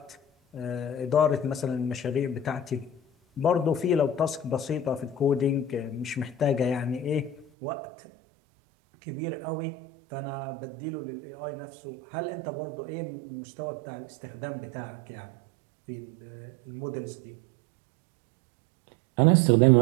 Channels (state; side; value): drops out; left; at 7.5 s